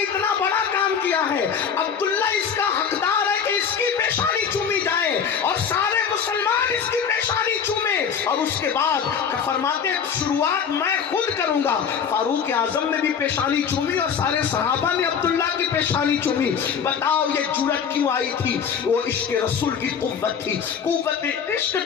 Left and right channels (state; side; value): quieter; right; 7.1 dB